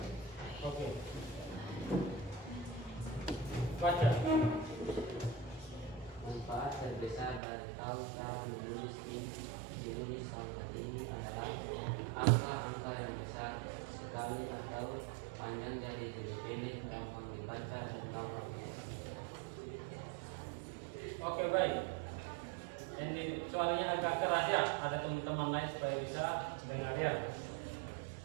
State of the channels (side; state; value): left; drops out; at 7.4 s